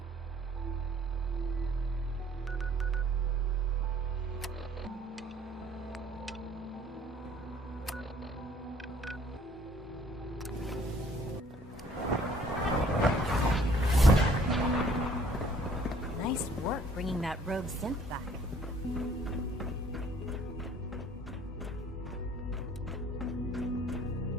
Nice work bringing that rogue synth back.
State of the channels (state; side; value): normal; both; correlation 0.57